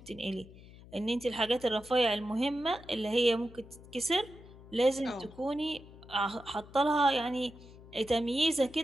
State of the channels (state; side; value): noise; left; hum, 19 dB below the sound